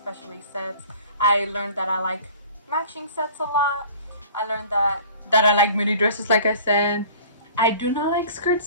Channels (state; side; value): inverted; both; correlation -0.46